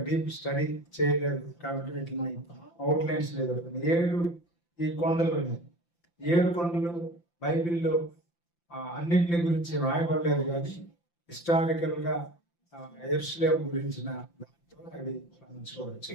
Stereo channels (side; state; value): right; late; 5.8 ms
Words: డీప్ స్టడీ చేయలేదు కాబట్టి వీటిని అవుట్లైన్స్ లేదు. 7 ఈ కొండలు ఉన్నాయి. 7 కొండలు బైబిల్లో అన్నింటిని గురించి రాయబడలేదు, కానీ హిస్టారికల్గా యెరూషలేము గురించిన దాంతో అవి మనం చూడవచ్చు.